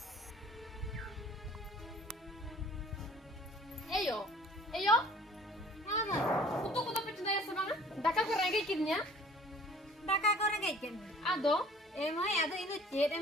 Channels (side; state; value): both; normal; correlation 0.51